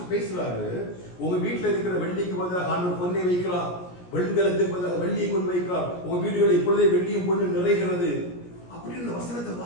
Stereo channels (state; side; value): late; right; 17 ms